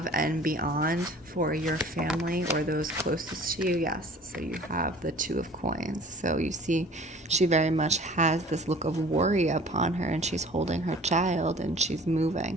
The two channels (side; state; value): both; normal; correlation 0.47